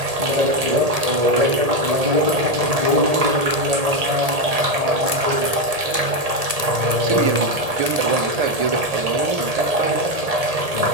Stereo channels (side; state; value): left; late; 1.8 ms